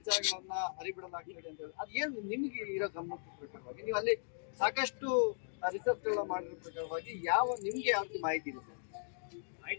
ಹರಿಬಿಡಲಾಗ್ತದೆ ಅಂತ ಹೇಳಿ. ಅದ್ ಏನ್ ನಿಮ್ಗೆ ಇರೋ ಗಮನದ ಪ್ರಕಾರವಾಗಿ ನೀವು ಅಲ್ಲಿ ಸಾಕಷ್ಟು ರಿಸರ್ಚ್ ಗಳನ್ನ ಮಾಡಿರೋ ಪ್ರಕಾರವಾಗಿ ನಿಮ್ಗೆ ಯಾವ ಮಾಹಿತಿ ಇದೆ ಸರ್?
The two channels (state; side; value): silent; right; digital silence